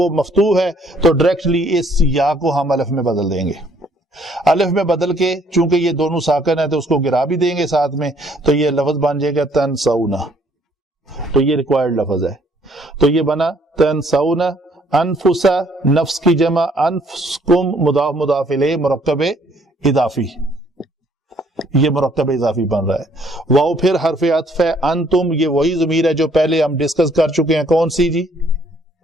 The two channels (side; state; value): both; normal; correlation 0.64